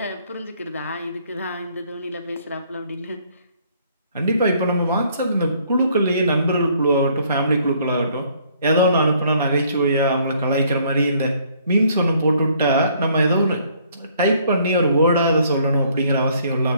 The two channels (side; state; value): both; inverted; correlation -0.63